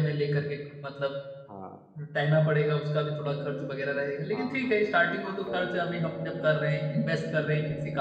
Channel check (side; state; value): both; identical; correlation 1.00